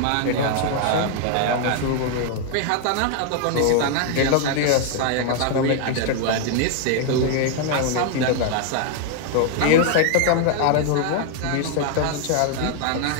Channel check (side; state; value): both; different; correlation 0.00